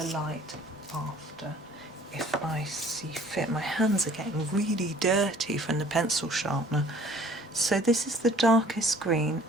light after, if I see fit. My hands are getting really dirty from the pencil sharpener. So this is the darkest green,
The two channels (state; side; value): normal; both; correlation 0.54